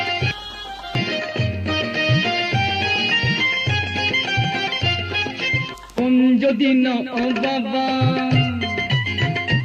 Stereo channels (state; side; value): identical; both; correlation 1.00